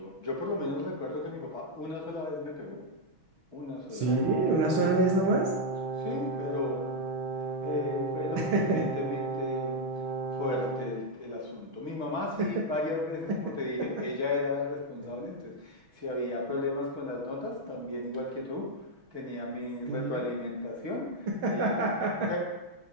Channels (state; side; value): late; left; 6.2 ms